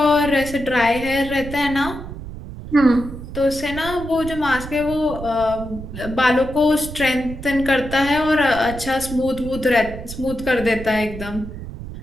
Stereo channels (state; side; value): noise; right; rumble, 11 dB below the sound